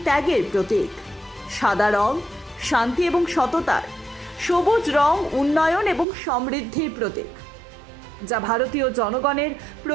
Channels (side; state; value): left; drops out; at 6.1 s